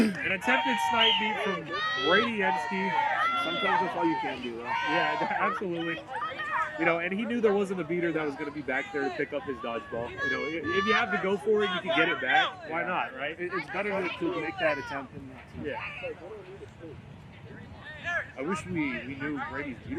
attempted snipe beat from Brady Ensky. Sometimes that's all you can do, though. Yeah, absolutely. And he knew there wasn't a beater that was going to be back there to pick up his dodgeball. If you have to go for it, you can get it back. Why not, right? It's better to make that attempt than not to. Yeah. I wish we knew Brady's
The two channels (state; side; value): identical; both; correlation 1.00